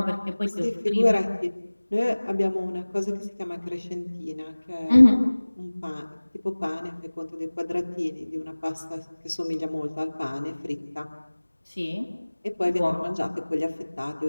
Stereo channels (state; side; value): inverted; both; correlation -1.00